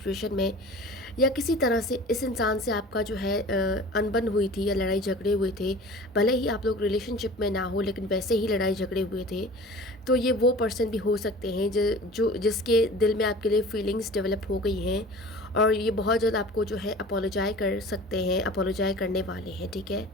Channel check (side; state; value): both; normal; correlation 0.41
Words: में, या किसी तरह से इस इंसान से आपका जो है अनबन हुई थी या लड़ाई झगड़े हुए थे, भले ही आप लोग रिलेशनशिप में ना हो, लेकिन वैसे ही लड़ाई झगड़े हुए थे, तो ये वो पर्सन भी हो सकते हैं जिसके दिल में आपके लिए फीलिंग्स डेवलप हो गई हैं, और ये बहुत जल्द आपको जो है अपोलोजाइज कर सकते हैं, अपोलोजाइज करने वाले हैं। ठीक है,